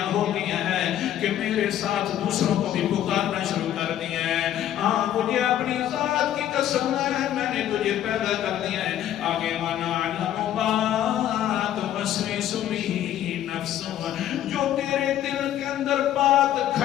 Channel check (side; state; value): right; quieter; 11.6 dB